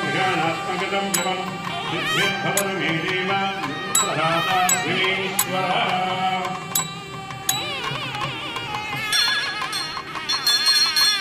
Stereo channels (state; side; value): identical; both; correlation 1.00